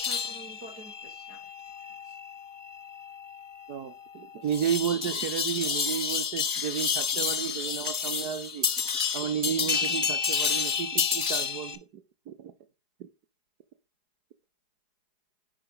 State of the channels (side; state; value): left; late; 4.8 ms